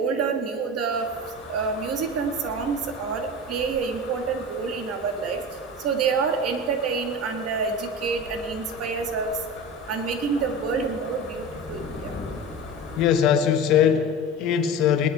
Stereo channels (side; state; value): both; normal; correlation 0.30